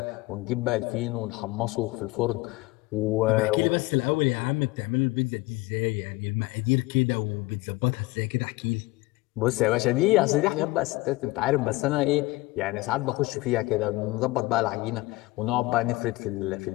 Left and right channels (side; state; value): right; quieter; 21.0 dB